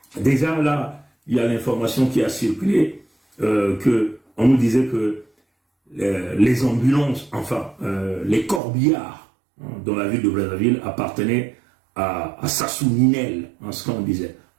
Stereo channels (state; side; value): drops out; left; at 8.6 s